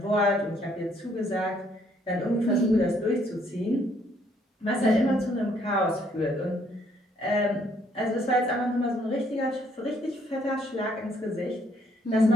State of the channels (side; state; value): both; normal; correlation 0.67